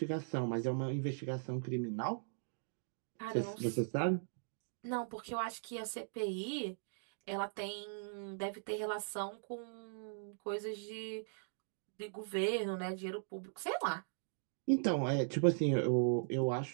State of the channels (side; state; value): left; silent; digital silence